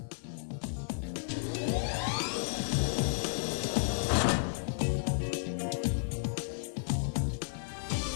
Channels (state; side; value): silent; right; 56 dB below the other